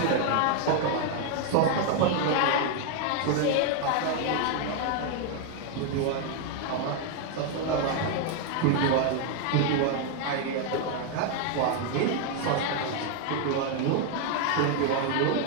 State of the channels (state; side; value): different; both; correlation 0.01